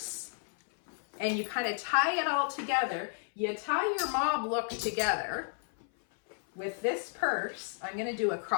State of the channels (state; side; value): silent; right; 56 dB below the other